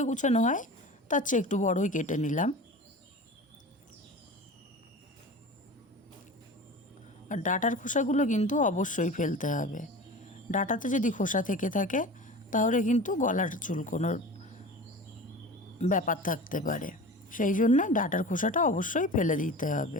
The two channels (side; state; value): both; normal; correlation 0.35